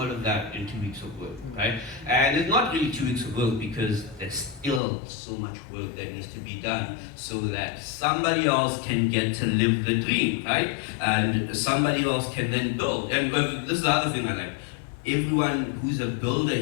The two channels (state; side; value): drops out; right; at 4.8 s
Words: of that in 2 weeks of work, right? And it's not really 2 weeks of work because there's still so much work that needs to be done so that somebody else can get to live the dream, right? And somebody else can then build. And this is the other thing I like. Everyone who's a builder